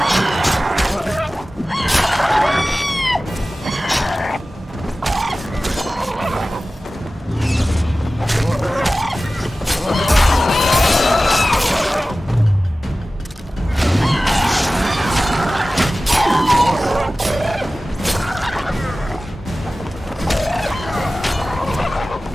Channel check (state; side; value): normal; both; correlation 0.96